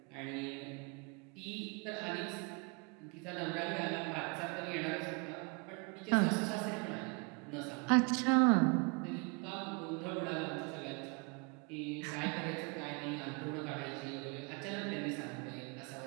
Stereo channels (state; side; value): quieter; left; 32.4 dB